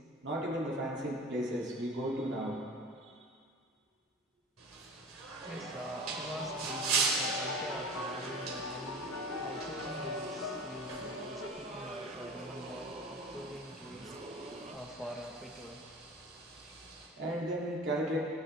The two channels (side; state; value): both; normal; correlation 0.37